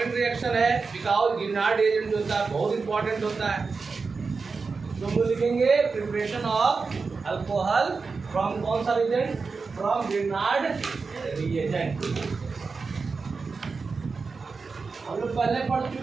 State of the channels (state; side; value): quieter; left; 4.6 dB